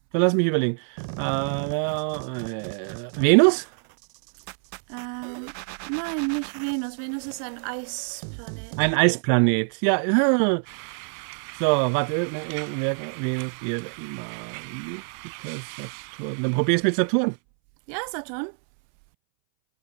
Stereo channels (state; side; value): silent; left; 62 dB below the other